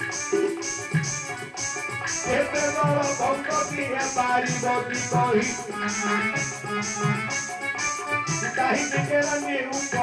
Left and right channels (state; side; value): identical; both; correlation 1.00